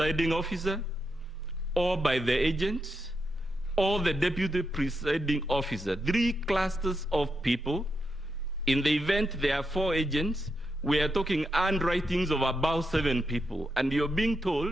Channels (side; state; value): both; normal; correlation 0.84